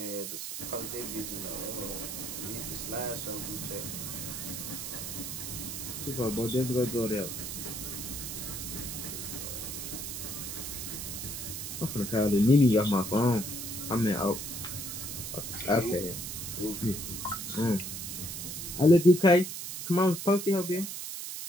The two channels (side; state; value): right; noise; hiss, 6 dB below the sound